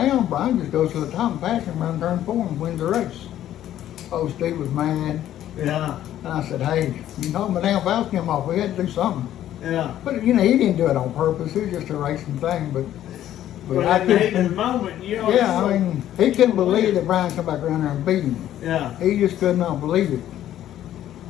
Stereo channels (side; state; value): right; quieter; 12.1 dB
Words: Brian just goes to the top and passes him around turn 4 and wins the race. Oh, Steve was mad. Yeah. And I said, hey, you knocked my damn valve stem off, we had to do something. Yeah. But you know, he didn't do it on purpose, it was just a racing thing, but But I in the heat of the couldn't, moment, you know. yeah, I mean, he couldn't believe that Brian come back around there and beat him. Yeah. He just could not believe it.